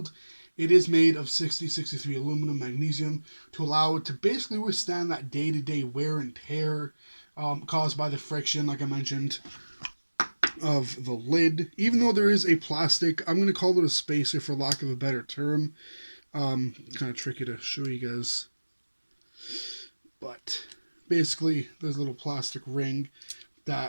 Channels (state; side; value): inverted; both; correlation -1.00